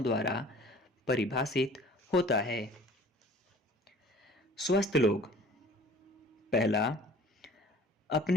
द्वारा परिभाषित होता है। स्वस्थ लोग, पहला,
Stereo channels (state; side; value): normal; both; correlation 0.48